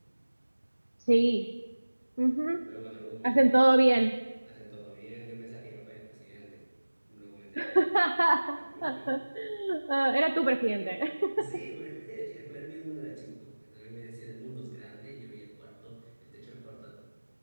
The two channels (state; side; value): inverted; both; correlation -1.00